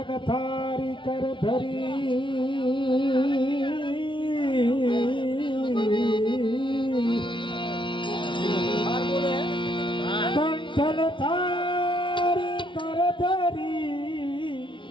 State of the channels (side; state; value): right; late; 0.24 ms